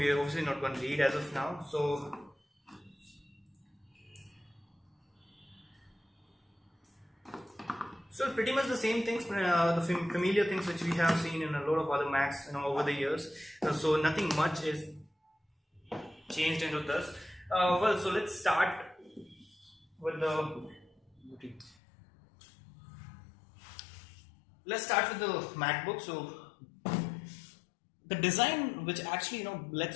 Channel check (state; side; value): drops out; right; at 21.8 s